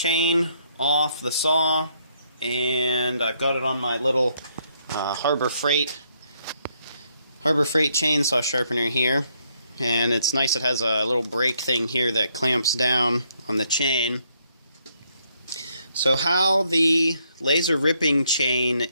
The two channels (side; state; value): both; inverted; correlation -0.72